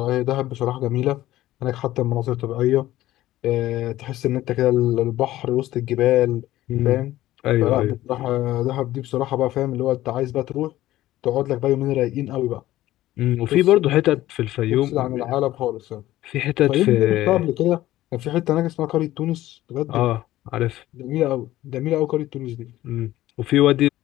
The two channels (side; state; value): right; quieter; 15.2 dB